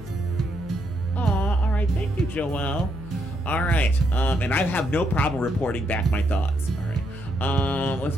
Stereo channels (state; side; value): noise; left; hum, 14 dB below the sound